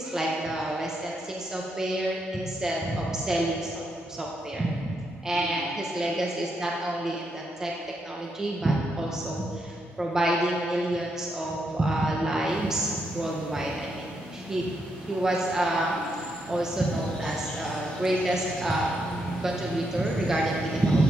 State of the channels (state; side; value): normal; both; correlation 0.79